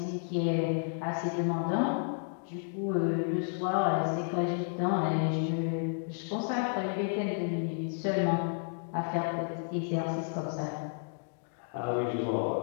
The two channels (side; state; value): right; silent; digital silence